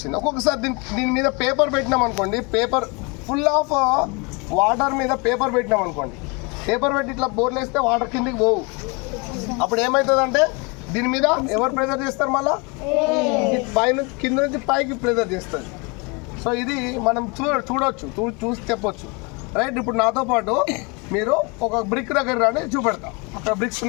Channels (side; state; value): right; quieter; 29.8 dB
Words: ఒక్కొక్కసారి దీని మీద పేపర్ పెట్టినాం అనుకోండి, పేపర్ ఫుల్ ఆఫ్ వాటర్ మీద పేపర్ పెట్టినాం అనుకోండి, పేపర్ పెట్టి ఇట్లా బోర్లు వేస్తే వాటర్ కిందికి పోవు. అప్పుడు ఏమవుతుంది అంటే దీని మీద ఎవరు ప్రెజర్ చేస్తారు, మళ్ళీ పైన కింద నుంచి పైకి ప్రెజర్ చేస్తుంది. సో ఇది మనం చూసి చెప్పొచ్చు. రైట్. ఇప్పుడు నాతో పాటు మీరు ఒక బ్రిక్ దగ్గర రాని చూపెడతాం. అక్కడ బ్రిక్స్